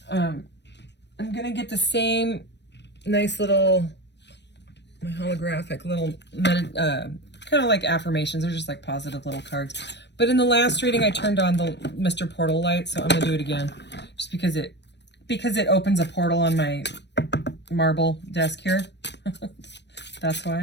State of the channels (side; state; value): right; late; 0.50 ms